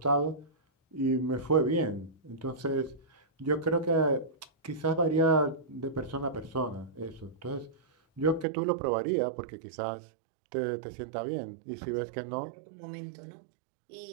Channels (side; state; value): left; drops out; at 8.5 s